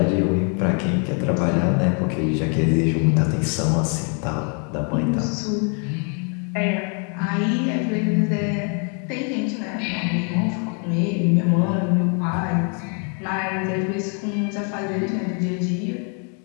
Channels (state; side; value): quieter; right; 39.2 dB